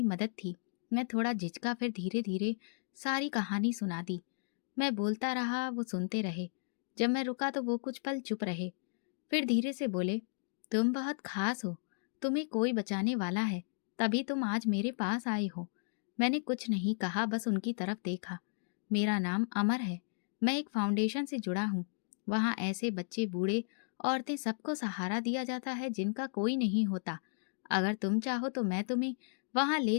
मदद थी। मैं थोड़ा झिझका, फिर धीरे धीरे सारी कहानी सुना दी। मैं बोलता रहा, वो सुनते रहे। जब मैं रुका तो वो कुछ पल चुप रहे, फिर धीरे से बोले, तुम बहुत खास हो, तुम्हें कोई बचाने वाला है, तभी तुम आज मेरे पास आए हो। मैंने कुछ नहीं कहा, बस उनकी तरफ देखा। मेरा नाम अमर है। मैं एक फाउंडेशन से जुड़ा हूँ। वहाँ ऐसे बच्चे, बूढ़े, औरतें, सबको सहारा दिया जाता है जिनका कोई नहीं होता। अगर तुम चाहो तो मैं तुम्हें वहाँ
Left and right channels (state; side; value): silent; right; digital silence